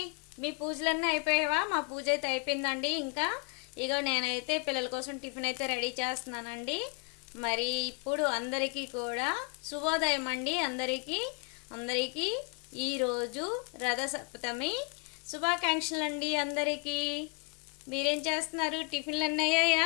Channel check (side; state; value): right; quieter; 30.3 dB